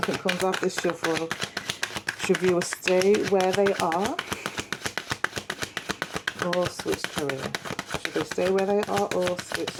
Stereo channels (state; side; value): identical; both; correlation 1.00